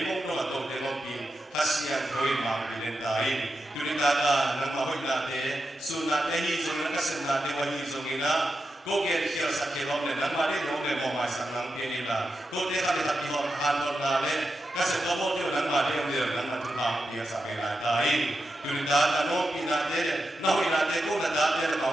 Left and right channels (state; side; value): normal; both; correlation 0.88